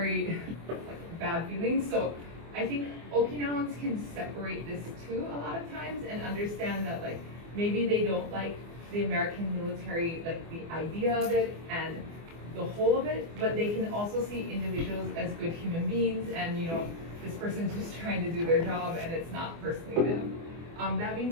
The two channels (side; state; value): left; late; 24 ms